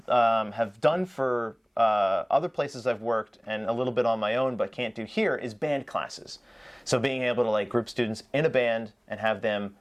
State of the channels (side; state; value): both; identical; correlation 1.00